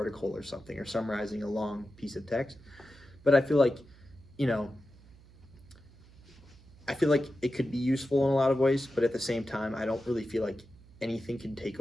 or something, or summarizing a long piece of text. But I feel like, it could be useful in a lot of ways, but at the same time, I don't really feel like anything can take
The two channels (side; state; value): right; noise; hum, 23 dB below the sound